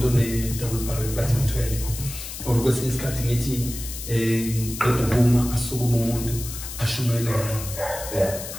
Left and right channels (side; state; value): left; noise; hiss, 9 dB below the sound